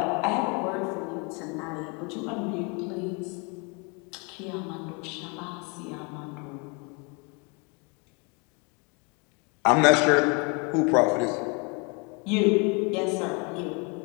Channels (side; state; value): right; quieter; 31.7 dB